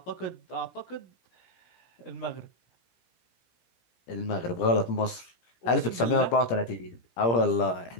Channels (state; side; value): late; right; 17 ms